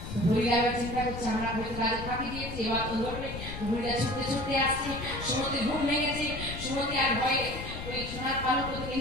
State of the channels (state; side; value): noise; left; rumble, 9 dB below the sound